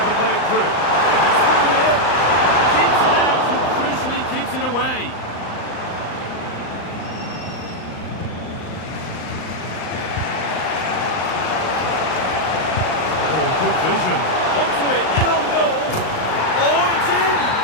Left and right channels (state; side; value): late; right; 38 ms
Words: play it through. And he's through here. Keeps it out and crucially keeps it away. Oh, good vision. Onto it, in on goal. Oh, it's in!